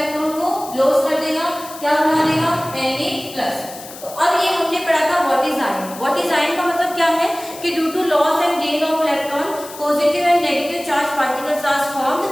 को लॉस कर देगा, क्या बना देगा, Na+। तो अब ये हमने पढ़ा था what is ion. What is ion का मतलब क्या है कि due to loss and gain of electron positive and negative charge particles are formed,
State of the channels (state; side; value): noise; left; hiss, 15 dB below the sound